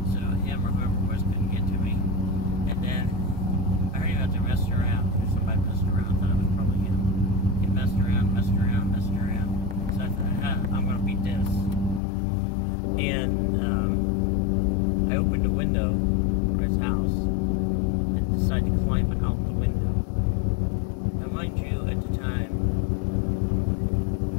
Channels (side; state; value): right; drops out; at 12.0 s